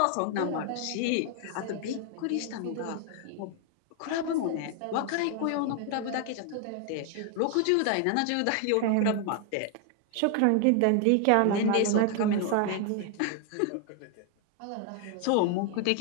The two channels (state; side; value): different; both; correlation 0.00